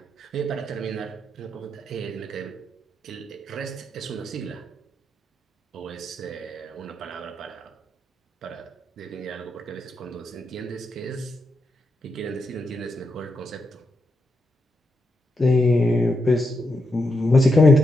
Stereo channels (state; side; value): normal; both; correlation 0.83